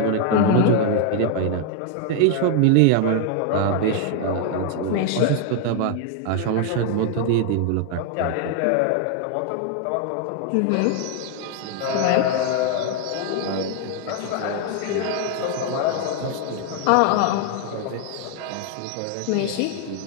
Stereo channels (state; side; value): different; both; correlation 0.00